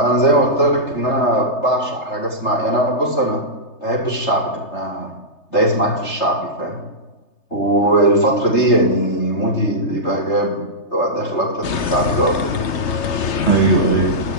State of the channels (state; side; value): late; right; 3.3 ms